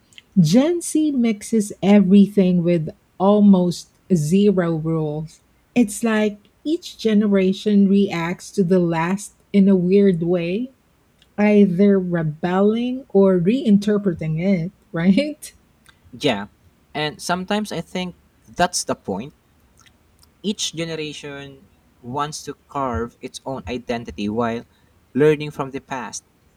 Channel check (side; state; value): both; identical; correlation 1.00